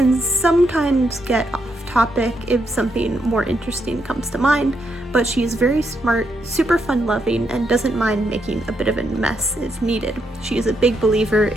sometimes get off topic if something more interesting comes to mind, but she is very smart, super fun-loving, and doesn't mind making a bit of a mess if needed. She is a big believer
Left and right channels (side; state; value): both; normal; correlation 0.79